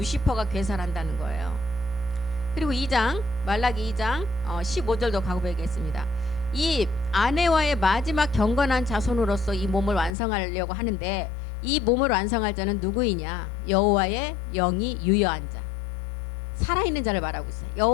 괴사를 한다는 거예요. 그리고 2장 말라기 2장 15절도 가보겠습니다. 이 아내와의 마지막 경건한 자손으로서 이 몸을 완성하려고 하는데 이 몸을 완성할 자는 누구이냐? 여호와의 영이 유여한 자, 살아있는 자를 말하고 있어요.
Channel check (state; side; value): drops out; right; at 10.2 s